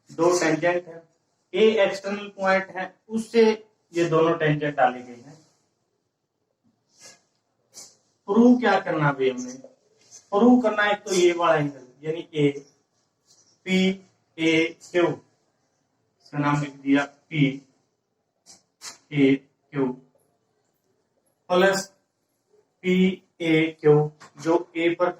दो टेंजेंट है। A एक्सटर्नल पॉइंट है, उससे ये दोनों टेंजेंट डाले गए हैं। प्रूव क्या करना है हमने, प्रूव करना है तो ये वाला एंगल यानी ए पी ए क्यू, इसका नाम लिख दिया P A Q, plus P A Q जो ए पर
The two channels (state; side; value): identical; both; correlation 1.00